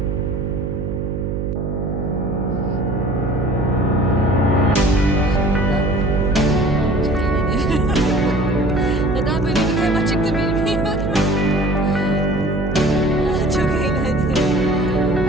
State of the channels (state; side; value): noise; right; hum, 3 dB below the sound